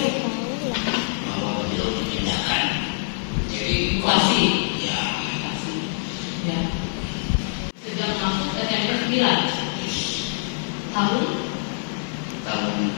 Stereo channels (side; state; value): right; silent; 57 dB below the other